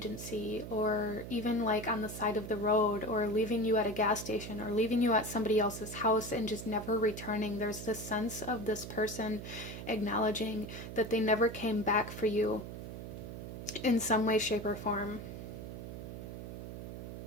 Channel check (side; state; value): right; noise; hum, 9 dB below the sound